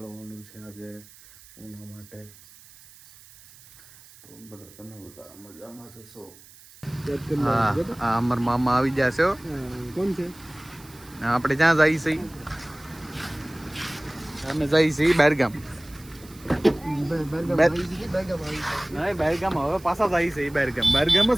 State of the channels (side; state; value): right; noise; hiss, 22 dB below the sound